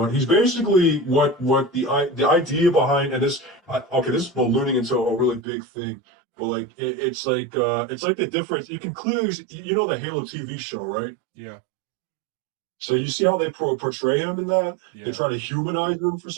basically what the idea behind, and okay, this is ballooning into a really big thing, but like it's like the difference. You can clearly the Halo TV show, right? Yeah. So you see how they portray him in that? They Yeah. try to humanize him for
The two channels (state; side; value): drops out; left; at 5.4 s